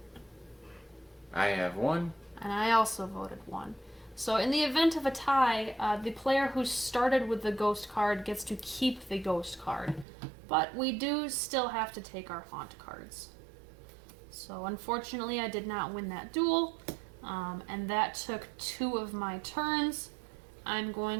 I have 1. And I also voted 1. So in the event of a tie, the player who started with the ghost card gets to keep the ghost card. But we do still have to take our haunt cards. So unfortunately, I did not win that duel, and that took 2 of my turns. I'm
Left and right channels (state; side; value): drops out; left; at 10.1 s